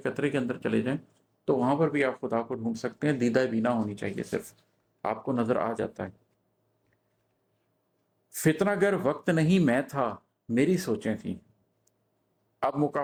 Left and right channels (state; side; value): identical; both; correlation 1.00